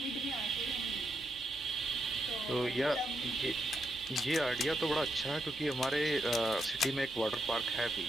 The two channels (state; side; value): normal; both; correlation 0.81